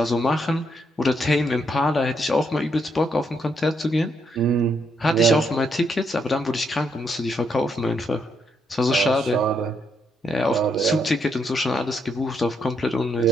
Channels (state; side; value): normal; both; correlation 0.76